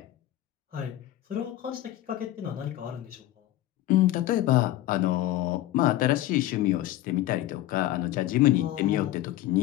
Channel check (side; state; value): right; quieter; 14.4 dB